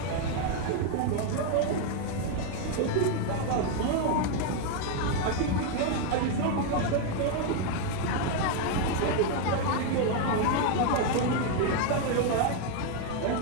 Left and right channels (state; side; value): different; both; correlation 0.01